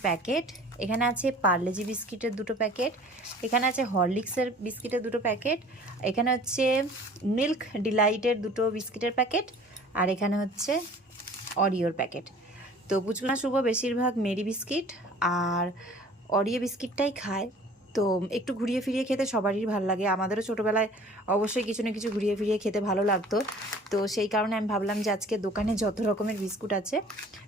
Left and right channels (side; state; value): both; normal; correlation 0.49